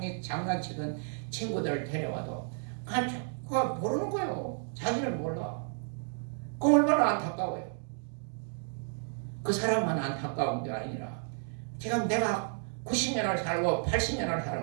친구들을 데려와도 그거 모르는 거예요. 자기를 몰라. 그 얼마나 안타까워요. 그 사람만 안타까운 게 아니라 지금 내가 90년을 살고 80년을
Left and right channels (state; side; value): silent; left; 56 dB below the other